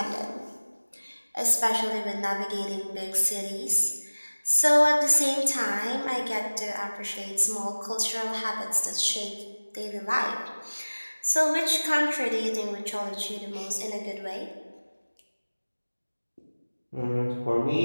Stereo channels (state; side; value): inverted; both; correlation -1.00